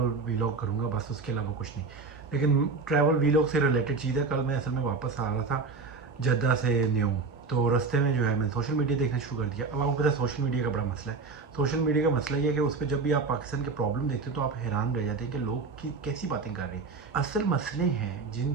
वीलॉग करूँगा बस, उसके अलावा कुछ नहीं। लेकिन ट्रैवल वीलॉग से रिलेटेड चीज़ है। कल मैं असल में वापस आ रहा था जद्दा से न्यू, तो रास्ते में जो है मैंने सोशल मीडिया देखना शुरू कर दिया। अब आपको पता है सोशल मीडिया का बड़ा मसला है। सोशल मीडिया का मसला ये है कि उस पर जब भी आप पाकिस्तान के प्रॉब्लम देखते हो तो आप हैरान रह जाते हैं कि लोग की कैसी बातें कर रहे हैं। असल मसले हैं जिन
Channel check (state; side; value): quieter; left; 4.4 dB